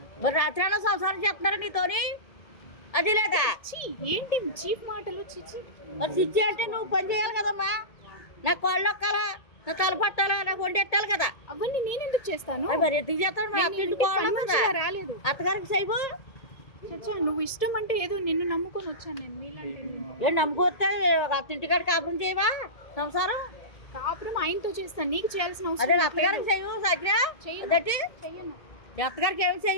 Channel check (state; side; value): late; right; 1.7 ms